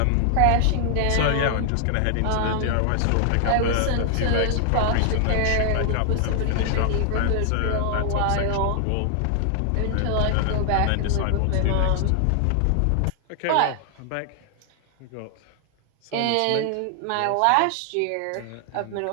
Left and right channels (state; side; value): different; both; correlation 0.00